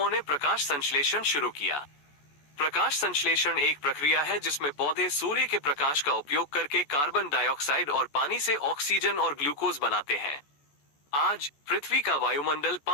ने प्रकाश संश्लेषण शुरू किया। प्रकाश संश्लेषण एक प्रक्रिया है जिसमें पौधे सूर्य के प्रकाश का उपयोग करके कार्बन डाइऑक्साइड और पानी से ऑक्सीजन और ग्लूकोज बनाते हैं। आज पृथ्वी का वायुमंडल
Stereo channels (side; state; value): right; late; 14 ms